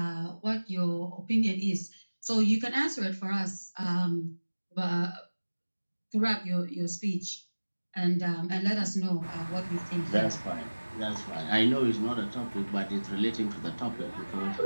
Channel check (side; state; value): both; inverted; correlation -1.00